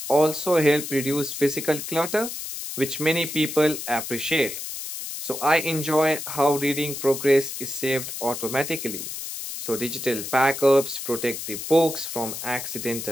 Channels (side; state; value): left; noise; hiss, 7 dB below the sound